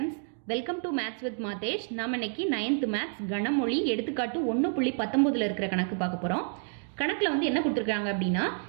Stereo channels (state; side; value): silent; left; 58 dB below the other